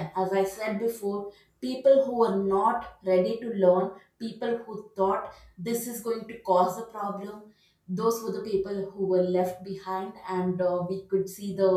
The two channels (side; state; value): both; identical; correlation 1.00